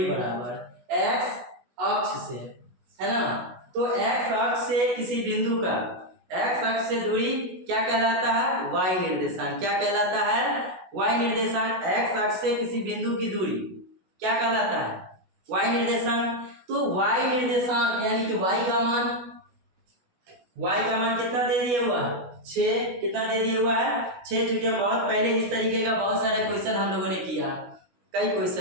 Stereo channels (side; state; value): left; late; 16 ms